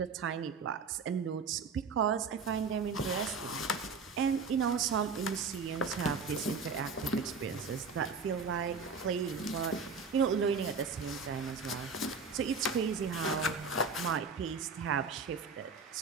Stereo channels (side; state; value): left; quieter; 4.8 dB